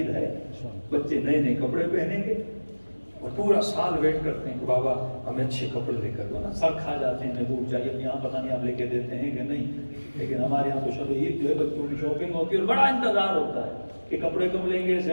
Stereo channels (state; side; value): inverted; both; correlation -1.00